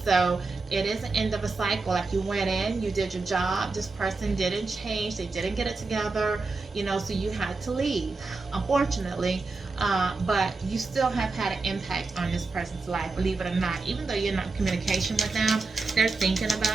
so it is an end of a cycle. Like, you went in, you did your job, this person didn't change, they didn't get it together, so you had to leave, unfortunately. But you still have had an impact on this person's life, believe it or not. Even though you're not in communication with them, they're thinking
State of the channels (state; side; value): quieter; left; 3.8 dB